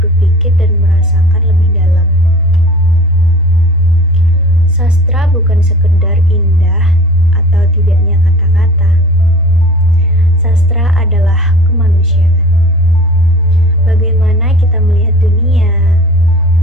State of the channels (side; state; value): both; normal; correlation 0.42